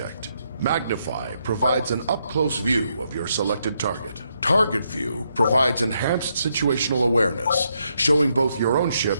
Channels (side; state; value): both; inverted; correlation -0.78